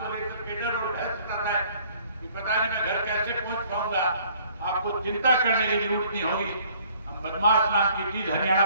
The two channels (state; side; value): inverted; both; correlation -0.58